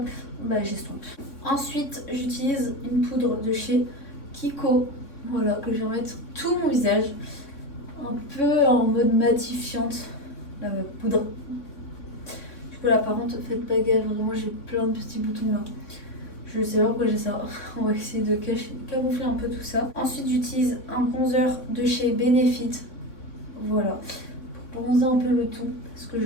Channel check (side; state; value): right; late; 3.6 ms